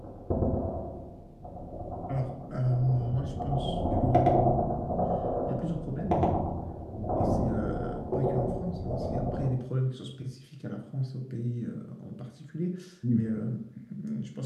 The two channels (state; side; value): identical; both; correlation 1.00